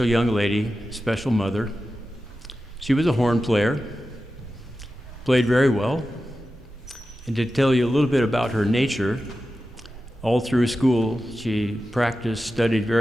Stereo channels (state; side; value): normal; both; correlation 0.93